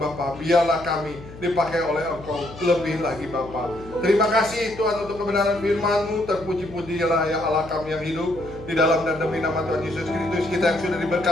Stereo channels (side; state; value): left; noise; hum, 16 dB below the sound